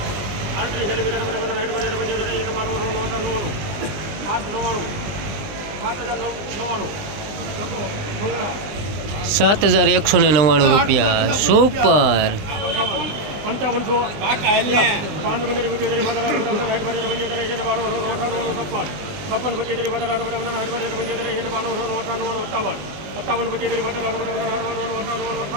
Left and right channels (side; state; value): left; late; 20 ms